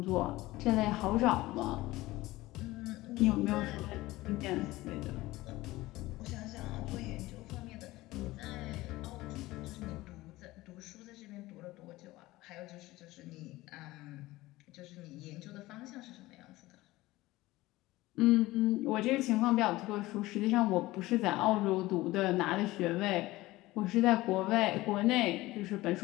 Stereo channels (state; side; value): quieter; right; 18.5 dB